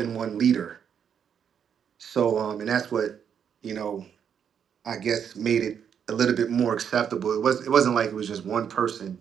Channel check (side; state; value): left; quieter; 8.0 dB